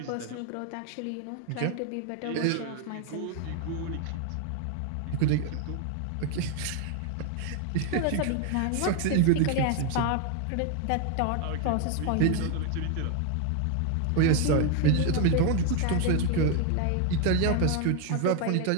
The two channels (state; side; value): different; both; correlation 0.01